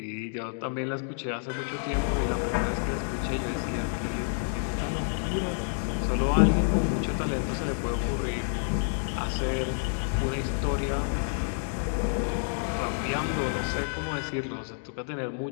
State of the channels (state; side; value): silent; right; digital silence